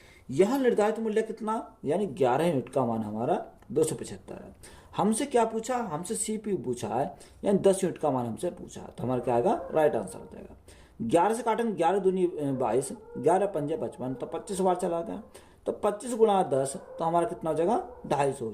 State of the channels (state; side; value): identical; both; correlation 1.00